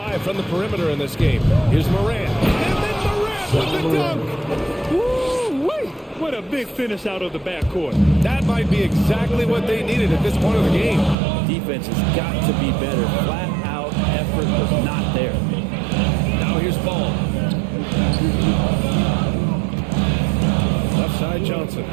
from the perimeter in this game. Here's Morant. And then Morant with the dunk. Woo-wee! What a big finish out of the backcourt. That might be exactly what they needed at this point of the game. Defense has got to be better. Flat out effort was not there. Now here's Paul. Left side Johnson.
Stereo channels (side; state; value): left; drops out; at 11.2 s